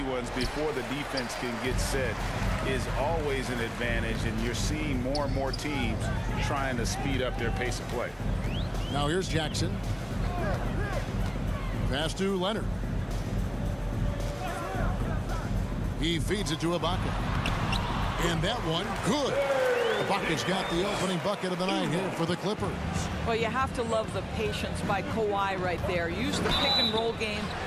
ones before the defense can get set is always an advantage, and you're seeing more and more teams trying to speed up their pace of play. Now here's Jackson. Pass to Leonard. He feeds it to Ibaka. And that one, good. Ibaka's got the opening bucket of the night here for the Clippers. Well, you have to love the patience by Kawhi right there. Use the pick-and-roll game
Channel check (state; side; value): identical; both; correlation 1.00